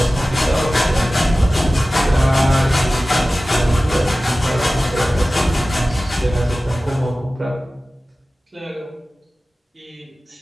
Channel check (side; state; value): both; normal; correlation 0.96